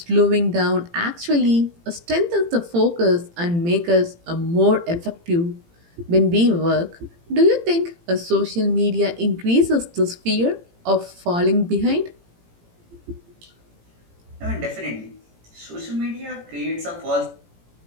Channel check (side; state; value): left; late; 18 ms